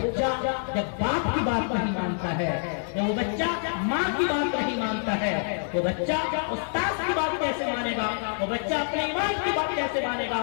جب باپ کی بات نہیں مانتا ہے، جب وہ بچہ ماں کی بات نہیں مانتا ہے، وہ بچہ استاد کی بات کیسے مانے گا؟ وہ بچہ اپنے ایمان کی بات کیسے مانے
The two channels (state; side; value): silent; right; digital silence